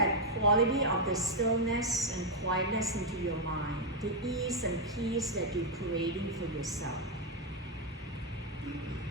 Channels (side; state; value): both; normal; correlation 0.01